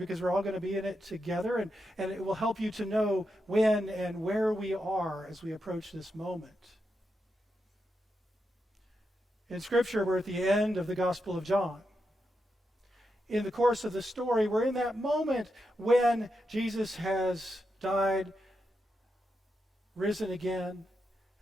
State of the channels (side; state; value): both; normal; correlation 0.85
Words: we're all going to be in it together, and it will help you to know when and where we are as we approach this moment. In Scripture, we're at the end of the Gospel of John. In the course of the story, we're in that moment when Jesus has died, risen again,